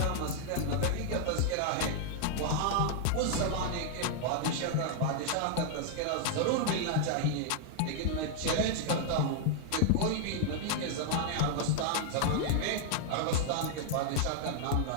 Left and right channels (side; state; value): both; different; correlation 0.00